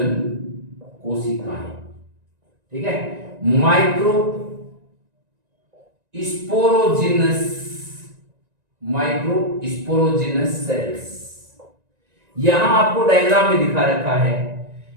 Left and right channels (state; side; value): late; left; 1.9 ms